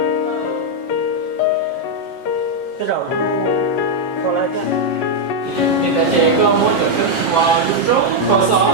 cái đầu khó lại thế mình đã chơi có mỗi chỗ cái và lúc trước có sao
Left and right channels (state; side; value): late; right; 6.9 ms